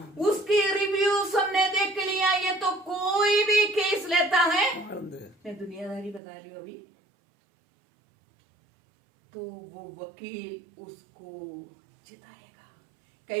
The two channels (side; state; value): left; drops out; at 6.2 s